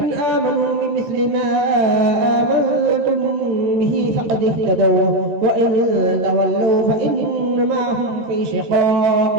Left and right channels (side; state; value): left; late; 13 ms